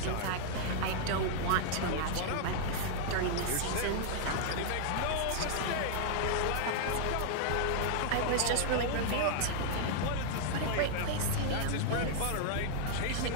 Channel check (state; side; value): different; both; correlation -0.01